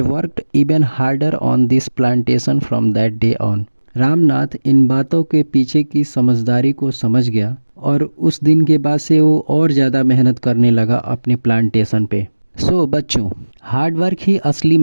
worked even harder on this plantation from that day on. Ramnath इन बातों के पीछे की समझदारी को समझ गया और उस दिन के बाद से वो और ज़्यादा मेहनत करने लगा अपने प्लांटेशन पे। सो बच्चों, हार्ड वर्क ही असली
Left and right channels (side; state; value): both; inverted; correlation -1.00